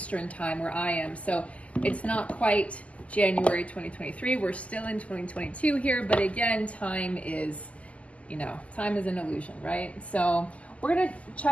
time where I am. So it's not quite January 2023. We're still in 2022 here, but again, time is an illusion, right? So we're going to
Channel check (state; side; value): late; right; 0.067 ms